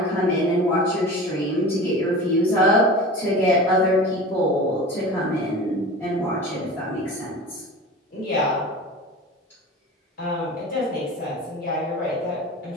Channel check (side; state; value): both; normal; correlation 0.35